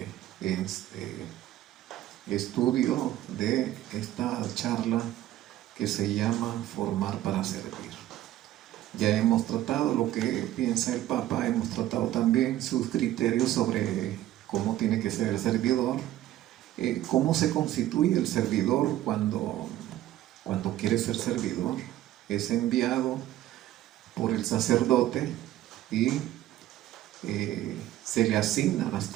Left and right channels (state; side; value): quieter; left; 13.8 dB